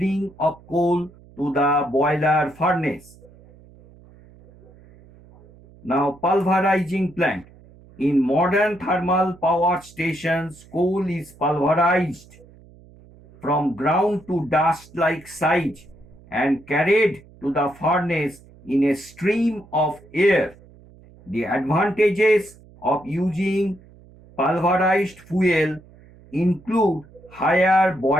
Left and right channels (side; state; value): right; noise; hum, 24 dB below the sound